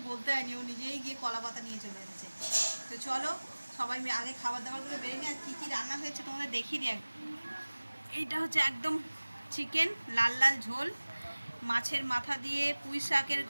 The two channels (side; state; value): both; inverted; correlation -1.00